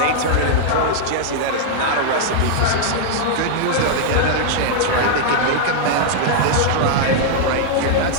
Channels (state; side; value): different; both; correlation -0.01